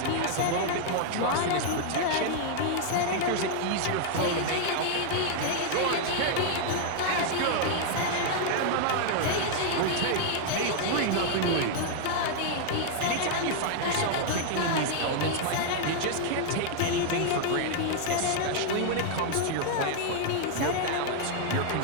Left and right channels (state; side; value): different; both; correlation 0.00